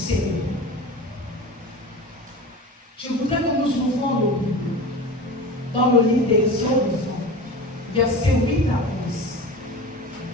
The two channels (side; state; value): both; normal; correlation 0.32